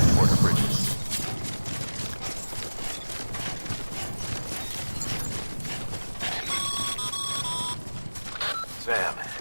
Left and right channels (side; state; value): both; inverted; correlation -1.00